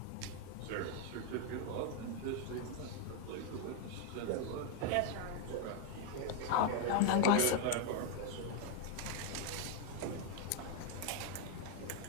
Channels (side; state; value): both; different; correlation 0.01